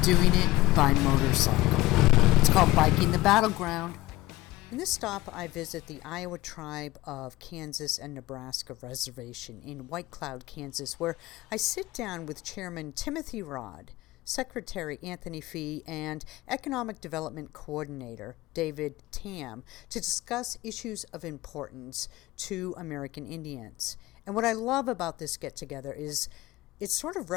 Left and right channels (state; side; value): quieter; right; 18.6 dB